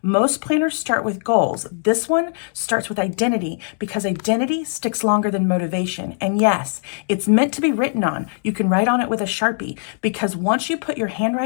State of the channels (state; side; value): silent; right; 65 dB below the other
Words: Most planners start with goals. This one starts with identity because identity sticks longer than motivation. And yes, it's meant to be written on. You can write on it with a Sharpie because once you put your